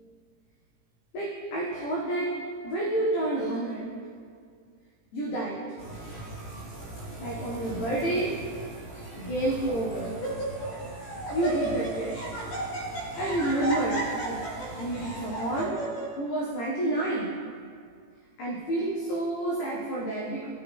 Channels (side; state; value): right; late; 18 ms